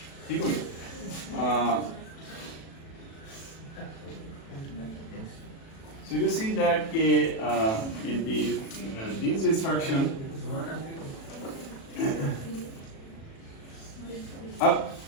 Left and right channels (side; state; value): right; late; 37 ms